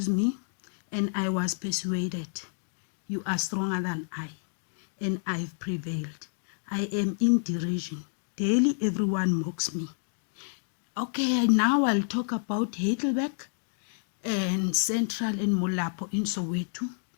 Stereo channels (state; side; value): silent; right; digital silence